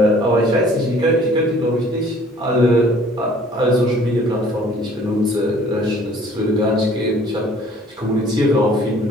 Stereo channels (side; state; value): both; normal; correlation 0.55